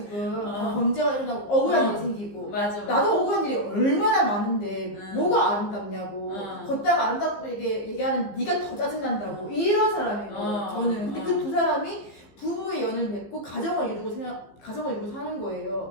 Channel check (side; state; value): right; late; 15 ms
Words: 범죄가 일어나고 억울한 일이 생기고. 맞아. 나도 억울한 일이 얼마나 많은데 뭐가 아름답냐고. 걷다가 아름답고 얘기하는 네가 더 짜증난다고. 이런 사람이고 저는. 근데 그 두 사람이 부부의 연을 맺고 가정을 이루고 사는